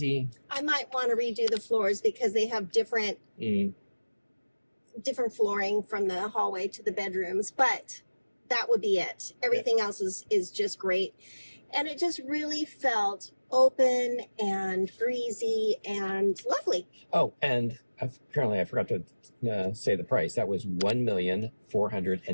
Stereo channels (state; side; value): inverted; both; correlation -1.00